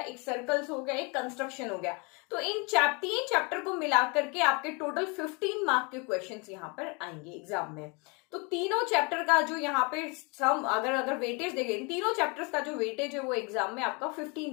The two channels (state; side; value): quieter; right; 31.0 dB